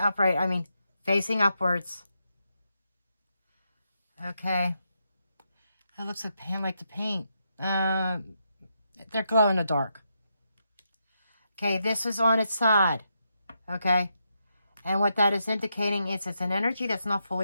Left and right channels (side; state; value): both; inverted; correlation -0.82